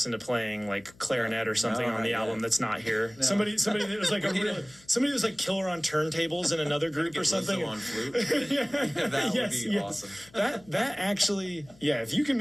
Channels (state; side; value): noise; left; hum, 26 dB below the sound